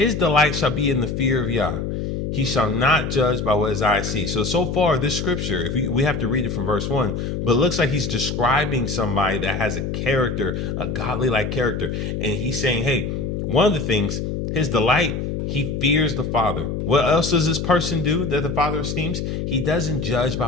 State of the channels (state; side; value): noise; left; hum, 3 dB below the sound